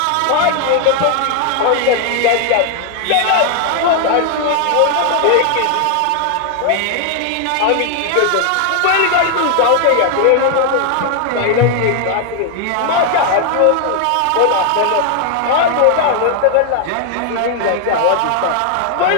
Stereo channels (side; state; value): both; different; correlation 0.00